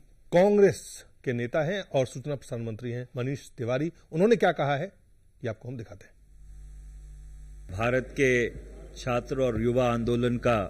कांग्रेस के नेता हैं और सूचना प्रसारण मंत्री हैं मनीष तिवारी, उन्होंने क्या कहा है ये आपको हम दिखाते हैं। भारत के छात्र और युवा आंदोलन का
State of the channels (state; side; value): identical; both; correlation 1.00